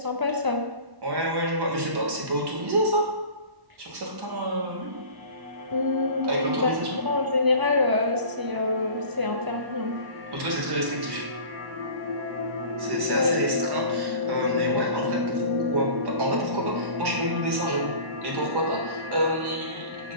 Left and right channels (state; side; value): late; left; 1.1 ms